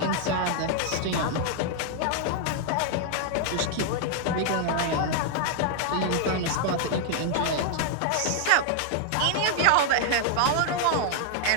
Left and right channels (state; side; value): different; both; correlation 0.00